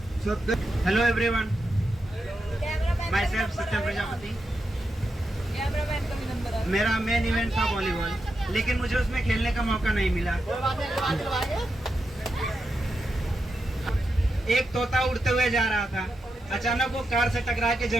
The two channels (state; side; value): normal; both; correlation 0.86